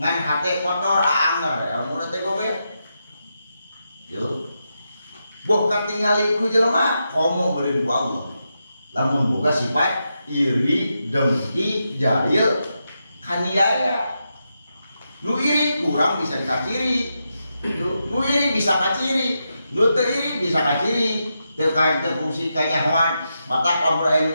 hate kotor anger, ilmuna teh gobek. Yo. Boh katingali ku jelema komo beureun ku Allah. Lamun boga sifat iri, dengki, jahil, kaniaya. Nu iri kurang bisa dikaciri. Nu iri bisa kaciri, nu teu iri bisa kaciri. Teu kain teu fungsi kanyahoan. Matak lamun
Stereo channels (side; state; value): both; inverted; correlation -0.86